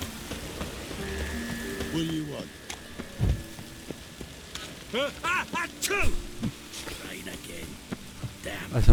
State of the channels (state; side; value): identical; both; correlation 1.00